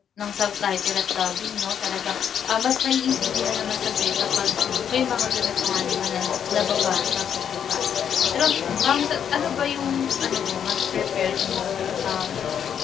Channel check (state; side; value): quieter; right; 8.4 dB